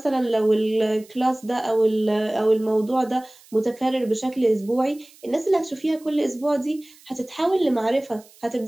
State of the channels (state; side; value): noise; right; hiss, 26 dB below the sound